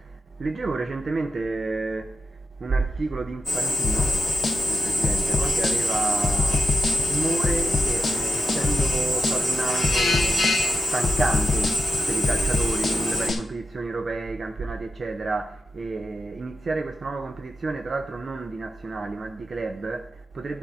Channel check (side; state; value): both; normal; correlation 0.88